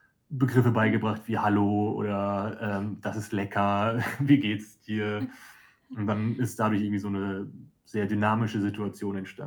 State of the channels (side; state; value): both; identical; correlation 1.00